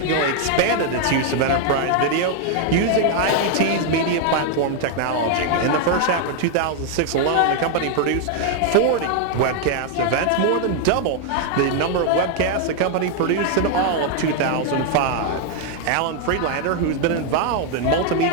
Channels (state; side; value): different; both; correlation 0.00